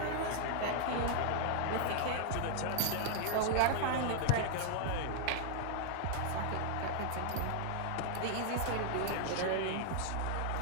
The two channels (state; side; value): different; both; correlation -0.01